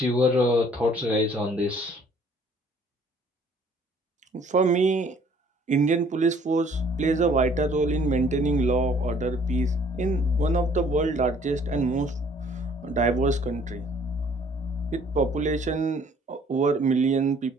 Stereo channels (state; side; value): normal; both; correlation 0.58